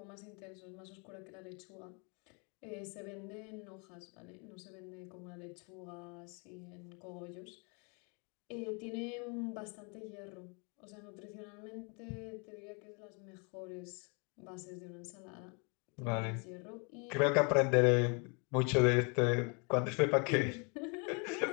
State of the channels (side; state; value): right; quieter; 34.4 dB